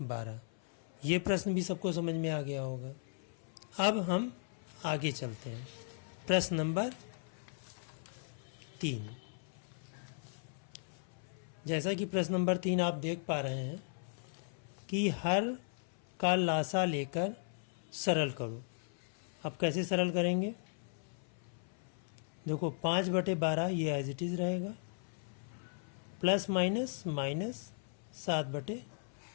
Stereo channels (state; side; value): silent; right; 53 dB below the other